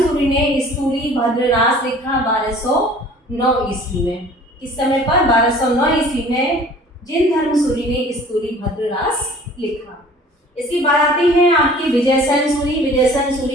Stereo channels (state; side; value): normal; both; correlation 0.49